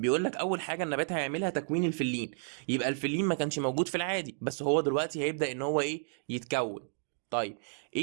لك اول حاجه النبات هيعملها تكوين الفلين. يبقى الفلين ما كانش موجود في العادي، بس هو دلوقتي هيبدا ان هو ايه؟ يتكون. طيب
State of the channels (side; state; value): left; silent; digital silence